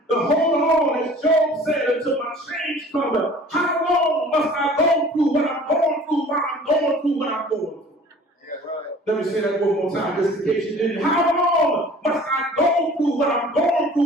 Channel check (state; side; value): normal; both; correlation 0.48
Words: to hold on, as Job said, until my change comes. How long must I go through what I'm going through while I'm going through what I'm going through? Yeah, right. Let me say that one more time, just in case you didn't. How long must I go through what I'm going